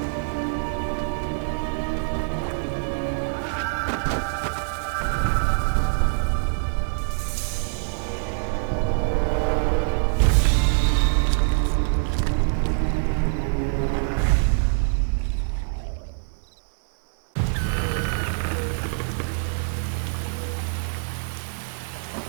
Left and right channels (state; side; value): silent; left; digital silence